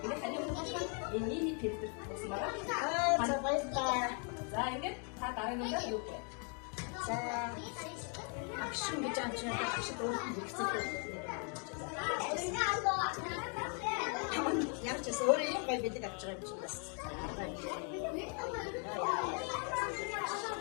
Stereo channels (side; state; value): right; quieter; 39.9 dB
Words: Ингээд таны өмнөөс энэ нийт фильтр болсон байна. За баярлалаа. За ингээд та дараагийн үндэ юу вэ? за агшин гэж амжаад агшид өөрөөр хэрэгцээтэй. Яг ч өөрөө юм гоё бэлэг авч байгаа юм чинь бас.